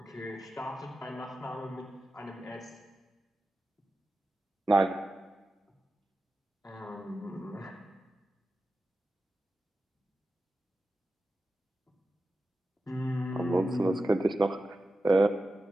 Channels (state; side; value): normal; both; correlation 0.92